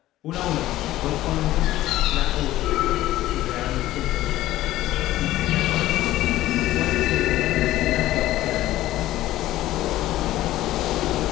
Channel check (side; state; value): right; quieter; 15.2 dB